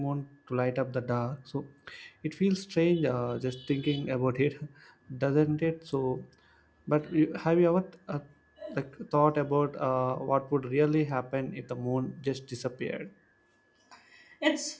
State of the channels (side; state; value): both; identical; correlation 1.00